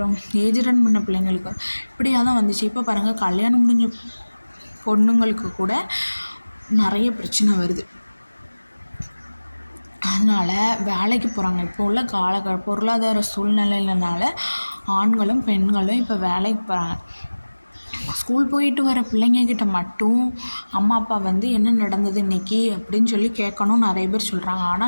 ஏஜ் அட்டன் பண்ண பிள்ளைங்களுக்கு இப்படியாக தான் வந்துச்சு. இப்போ பாருங்கள், கல்யாணம் முடிஞ்ச பொண்ணுங்களுக்கு கூட நிறைய பிரச்சனை வருது. அதனால் வேலைக்கு போகிறாங்க. இப்போ உள்ள பொருளாதார சூழ்நிலையினால ஆண்களும் பெண்களும் இப்போ வேலைக்கு போகிறாங்க. ஸ்கூல் போயிட்டு வர பிள்ளைங்கக்கிட்ட மட்டும் அம்மா அப்பா என்ன நடந்தது இன்றைக்கி அப்படின்னு சொல்லி கேட்கணும் நிறைய பேர் சொல்கிறாங்க.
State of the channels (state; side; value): inverted; both; correlation -1.00